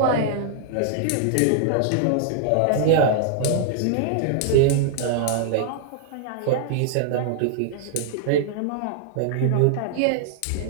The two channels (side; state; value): both; different; correlation -0.01